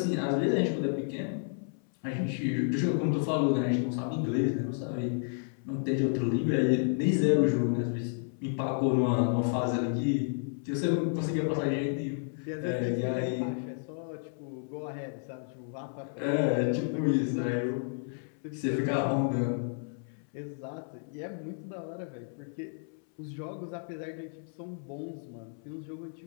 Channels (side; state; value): right; silent; 57 dB below the other